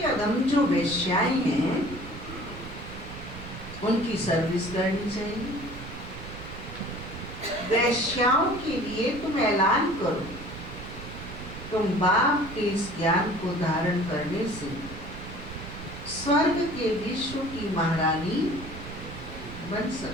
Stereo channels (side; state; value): right; noise; rumble, 12 dB below the sound